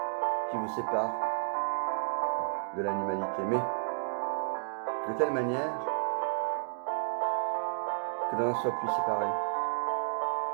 qui vous sépare de l'animalité. Mais de telle manière que l'on en soit plus séparé.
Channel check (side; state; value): left; silent; digital silence